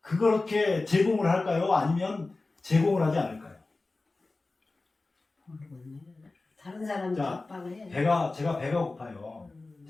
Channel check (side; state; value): right; quieter; 3.4 dB